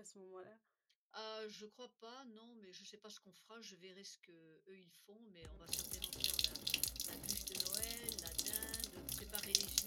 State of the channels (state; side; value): identical; both; correlation 1.00